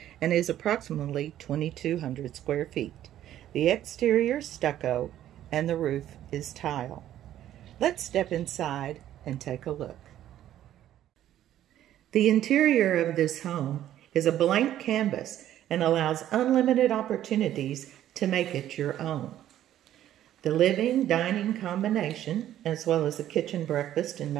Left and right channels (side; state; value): left; quieter; 12.1 dB